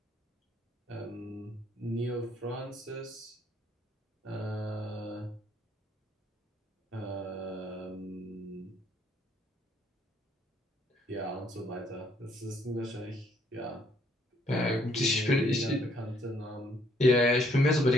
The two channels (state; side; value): normal; both; correlation 0.67